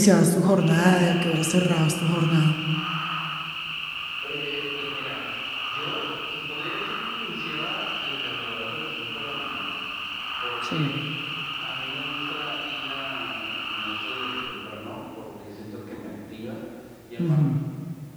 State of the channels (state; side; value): identical; both; correlation 1.00